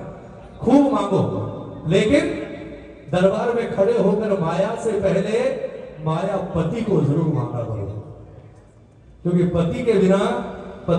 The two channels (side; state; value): both; identical; correlation 1.00